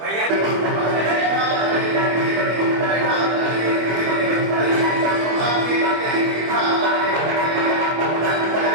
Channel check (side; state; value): left; late; 25 ms